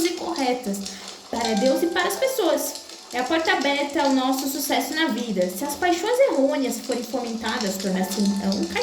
e corretas para Deus e para as pessoas. É a porta aberta ao nosso sucesso na vida. Se as paixões errôneas forem fomentadas, torna-se então um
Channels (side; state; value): both; identical; correlation 1.00